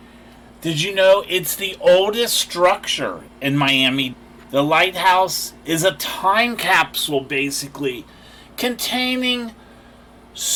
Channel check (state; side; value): identical; both; correlation 1.00